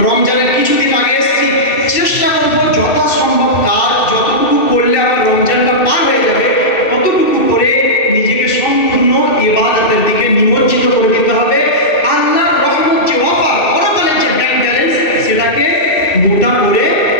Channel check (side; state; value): right; late; 2.6 ms